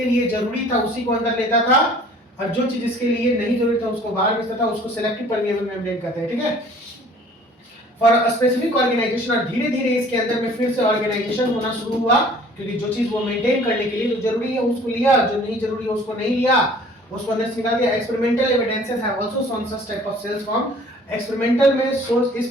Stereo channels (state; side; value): normal; both; correlation 0.52